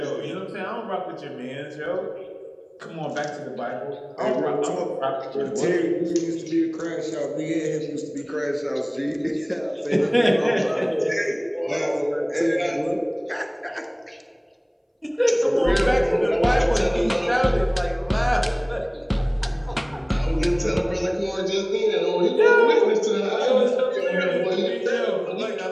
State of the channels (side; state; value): both; identical; correlation 1.00